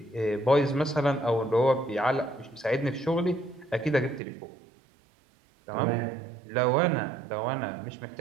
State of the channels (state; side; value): drops out; left; at 4.2 s